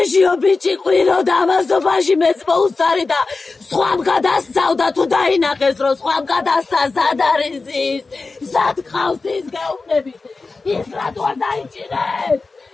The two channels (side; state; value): right; quieter; 3.9 dB